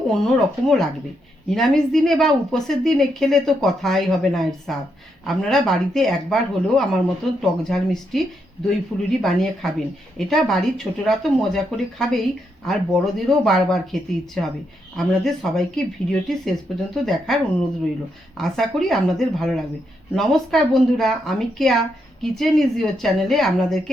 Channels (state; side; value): normal; both; correlation 0.80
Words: অন্য রকমও লাগবে। নিরামিষ দিনে বা উপোসের দিনে খেলে তো কথাই হবে না এর স্বাদ। আপনারা বাড়িতে একবার হলেও আমার মতন টক ঝাল মিষ্টি দই ফুলুরি বানিয়ে খাবেন। এটা বাড়ির ছোটরা তো মজা করে খাবেই, আর বড়দেরও বারবার খেতে ইচ্ছে হবে। আপনাদের সবাইকে ভিডিওটি শেষ পর্যন্ত দেখার অনুরোধ রইল। আশা করি আপনাদের ভালো লাগবে। নমস্কার বন্ধুরা, আমি কেয়া কিচেন ইজ ইওর চ্যানেলে আপনাদেরকে